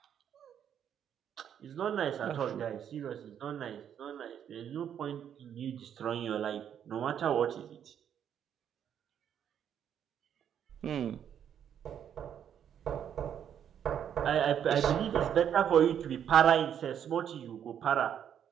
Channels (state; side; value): quieter; left; 9.1 dB